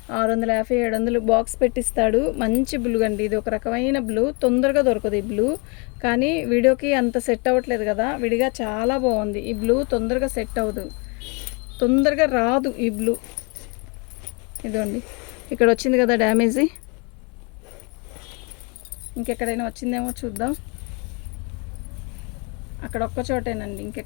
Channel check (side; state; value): right; quieter; 32.3 dB